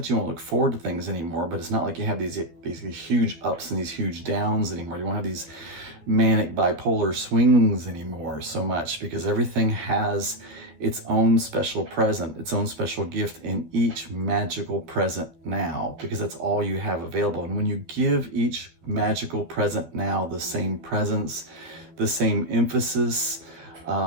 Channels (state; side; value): late; left; 12 ms